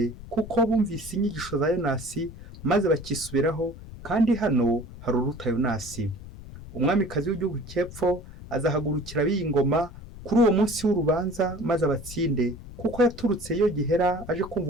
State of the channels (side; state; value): left; noise; rumble, 15 dB below the sound